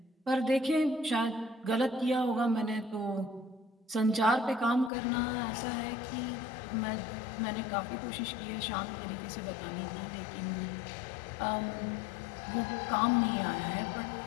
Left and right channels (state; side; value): drops out; right; at 4.9 s